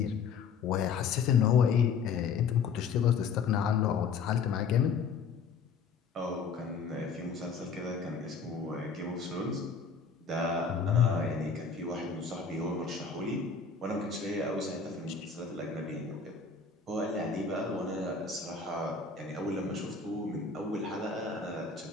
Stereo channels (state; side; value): quieter; right; 5.5 dB